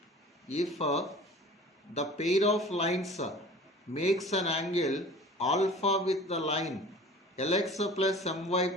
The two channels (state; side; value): normal; both; correlation 0.43